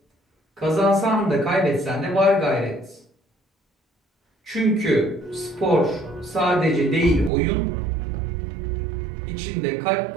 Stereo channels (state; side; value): drops out; left; at 7.3 s